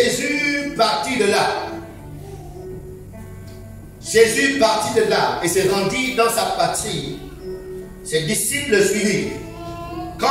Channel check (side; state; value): both; identical; correlation 1.00